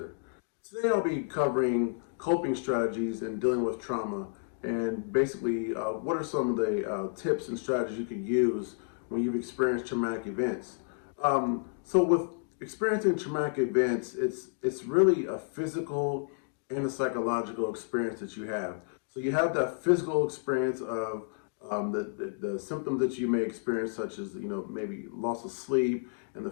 Today I'll be covering coping strategies and dealing with trauma and basically what are some of the tips and strategies you can use when you've experienced traumatic events. So with experiencing traumatic events, it's really a physical and a psychological experience that you have. So you have that physical experience of the symptoms that you may experience, such as maybe loss of sleep and the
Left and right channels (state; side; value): silent; right; digital silence